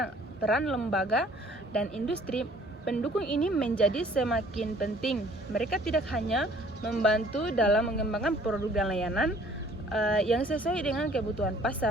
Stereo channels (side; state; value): both; normal; correlation 0.56